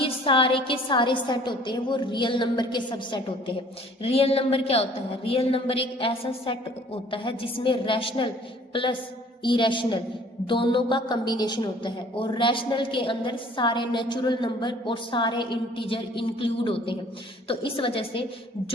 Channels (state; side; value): normal; both; correlation 0.54